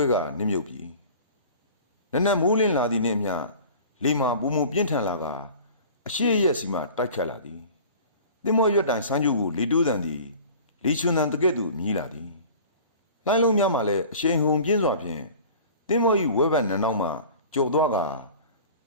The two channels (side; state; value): both; inverted; correlation -0.42